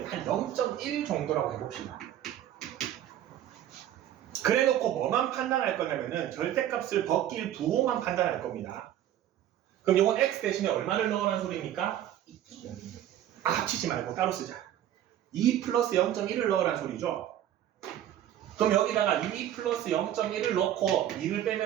한 0.1 정도라고 해봅시다. 그래 놓고 뭐만 판단할 거냐면은 절대값을 벗길 부호만 판단할 겁니다. 그럼 이건 x 대신에 얼마를 넣으라는 소리입니까? 합치지 말고 따로 쓰자. 2 플러스 0.1을 넣으라는 소리죠. 그럼 여기다가 2 플러스 0.1을 넣고 2를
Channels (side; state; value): left; quieter; 11.7 dB